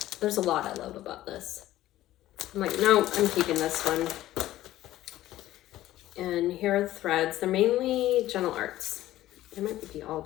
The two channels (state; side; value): quieter; right; 14.6 dB